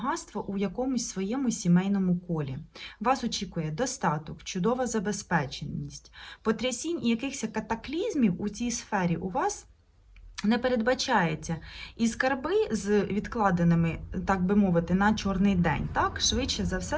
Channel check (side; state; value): both; identical; correlation 1.00